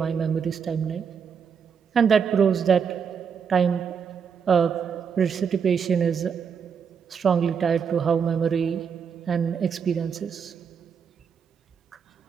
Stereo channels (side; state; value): left; quieter; 6.7 dB